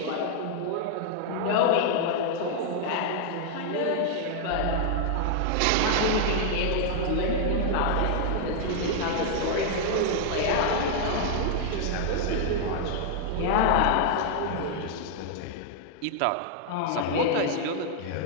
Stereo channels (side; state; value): both; different; correlation -0.01